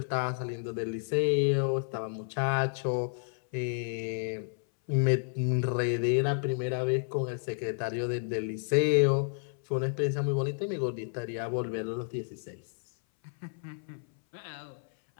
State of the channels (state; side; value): silent; right; 57 dB below the other